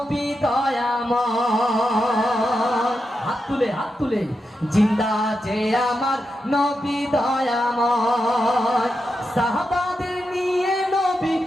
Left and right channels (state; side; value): normal; both; correlation 0.87